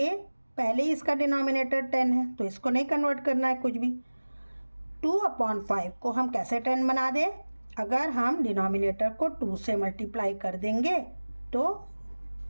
पहले ही इसका डिनोमिनेटर 10 है तो इसको नहीं कन्वर्ट करना है कुछ भी। 2/5 को हम कैसे 10 बना दें, अगर हम डिनोमिनेटर को 2 से मल्टीप्लाई कर देंगे तो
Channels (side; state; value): both; inverted; correlation -1.00